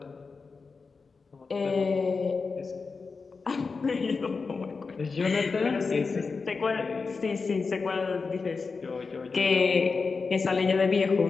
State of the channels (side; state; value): right; quieter; 4.6 dB